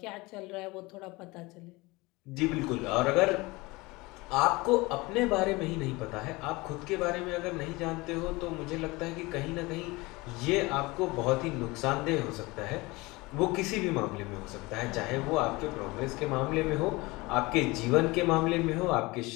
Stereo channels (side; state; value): right; quieter; 22.9 dB